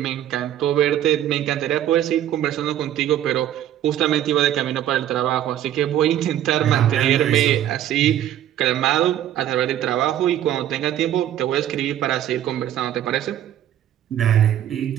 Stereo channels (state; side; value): quieter; left; 11.5 dB